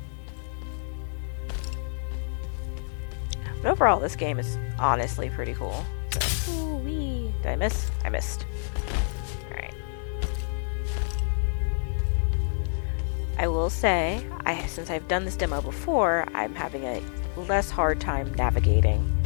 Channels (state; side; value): silent; right; digital silence